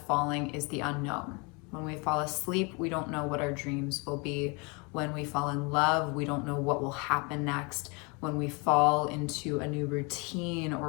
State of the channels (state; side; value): quieter; right; 30.3 dB